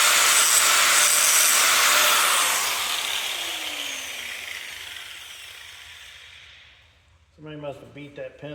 Somebody must have beat that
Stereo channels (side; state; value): both; identical; correlation 1.00